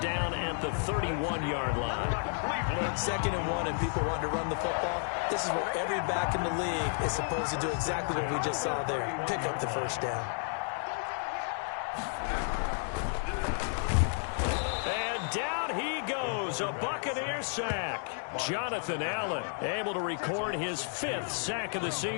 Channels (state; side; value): silent; right; 56 dB below the other